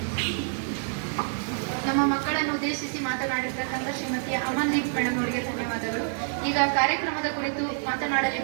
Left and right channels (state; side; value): silent; left; digital silence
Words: ನಮ್ಮ ಮಕ್ಕಳನ್ನು ಉದ್ದೇಶಿಸಿ ಮಾತನಾಡಿರ್ತಕ್ಕಂಥ ಶ್ರೀಮತಿ ಅಮನ್ದೀಪ್ ಮೇಡಮ್ ಅವರಿಗೆ ಧನ್ಯವಾದಗಳು. ಈಗ ಕಾರ್ಯಕ್ರಮದ ಕುರಿತು